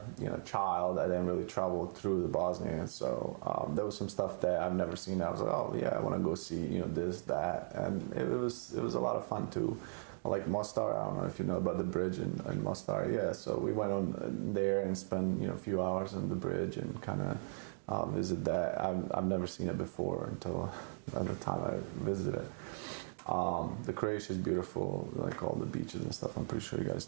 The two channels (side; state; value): left; silent; digital silence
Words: you know, child, I didn't really travel through the Bosnia. So there was some stuff that I've never seen. I was like, oh yeah, I want to go see, you know, this, that, and it was a lot of fun too. Like Mostar, I don't know if you know about the bridge in Mostar. Yeah, so we went on there and spent, you know, a few hours on the bridge and kind of visit that. I've never seen it before until at the time I visited. The Croatia is beautiful, like all the beaches and stuff. I'm pretty sure you